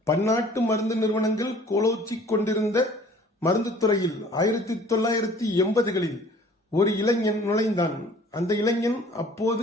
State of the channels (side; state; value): both; normal; correlation 0.51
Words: பன்னாட்டு மருந்து நிறுவனங்கள் கோலோச்சி கொண்டிருந்த மருந்து துறையில் 1980களில் ஒரு இளைஞன் நுழைந்தான். அந்த இளைஞன்